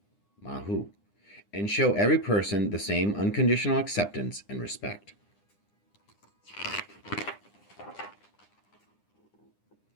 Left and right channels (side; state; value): right; late; 9.9 ms